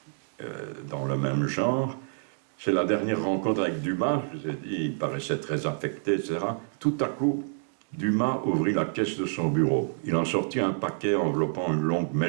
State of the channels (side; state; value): left; silent; digital silence